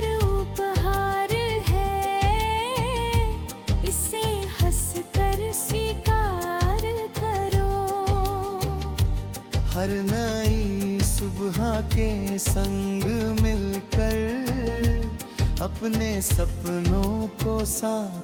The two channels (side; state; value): both; identical; correlation 1.00